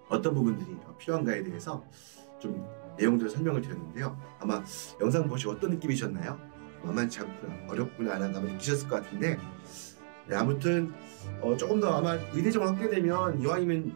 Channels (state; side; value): silent; left; digital silence